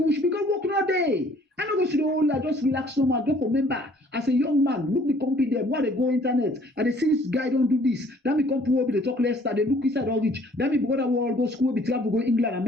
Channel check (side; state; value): both; normal; correlation 0.58